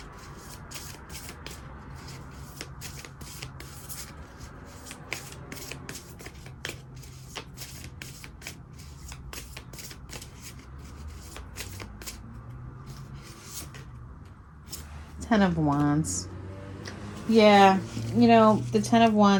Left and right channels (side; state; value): both; identical; correlation 1.00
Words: Ten of Wands. Yeah, the Ten of